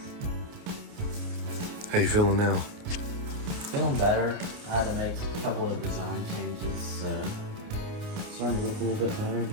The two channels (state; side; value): late; left; 28 ms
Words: How you feeling now? Feeling better. I had to make a couple of design changes, so it's starting to look a little bit better. Just